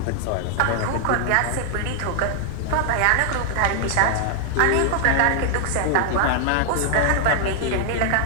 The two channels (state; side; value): different; both; correlation 0.00